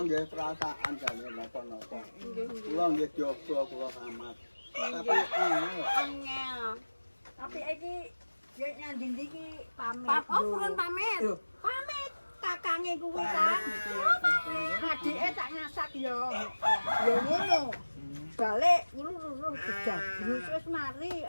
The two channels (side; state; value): both; inverted; correlation -1.00